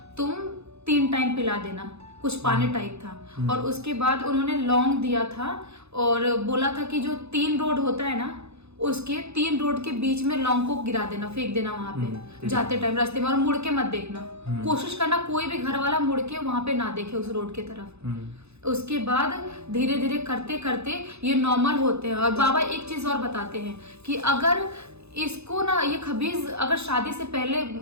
तुम 3 टाइम पिला देना, कुछ पानी टाइप था। और उसके बाद उन्होंने लौंग दिया था और बोला था कि जो 3 रोड होता है ना उसके 3 रोड के बीच में लौंग को गिरा देना, फेंक देना वहां पे जाते टाइम रास्ते में, और मुड़ के मत देखना। कोशिश करना कोई भी घर वाला मुड़ के वहां पे ना देखे उस रोड की तरफ। उसके बाद धीरे धीरे करते करते ये नॉर्मल होते हैं। और बाबा एक चीज और बताते हैं कि अगर इसको ना ये खबीज अगर शादी से पहले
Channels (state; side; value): late; left; 0.80 ms